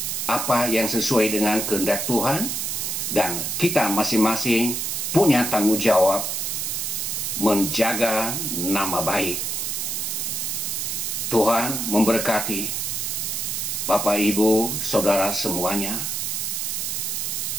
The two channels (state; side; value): noise; right; hiss, 1 dB below the sound